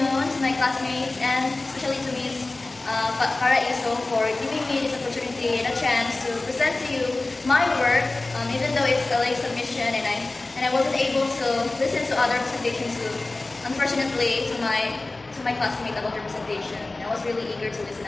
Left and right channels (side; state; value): right; quieter; 3.1 dB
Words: to my classmates and especially to Ms. Paraiso for giving me this opportunity and a chance to present to you my work, even though it's a late submission and I wasn't able to listen to other presentations unfortunately to my classmates about their presentation. I was really eager to listen